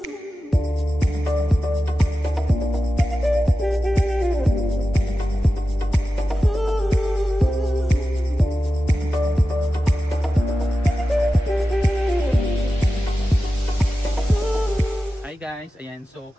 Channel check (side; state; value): both; normal; correlation 0.93